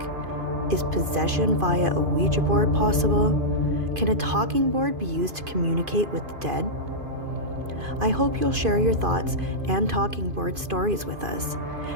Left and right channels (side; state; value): left; late; 2.5 ms